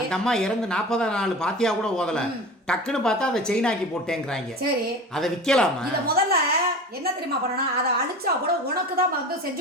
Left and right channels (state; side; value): normal; both; correlation 0.34